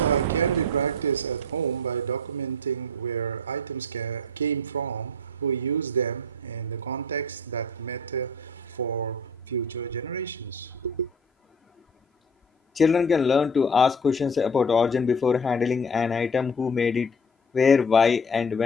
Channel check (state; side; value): normal; both; correlation 0.41